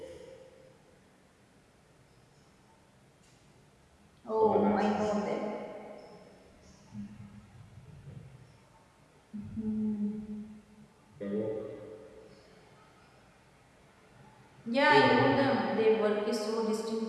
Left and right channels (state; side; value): identical; both; correlation 1.00